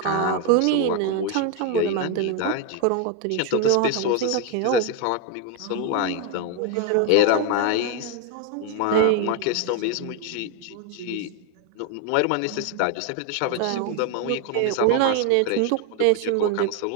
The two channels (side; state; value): both; different; correlation 0.01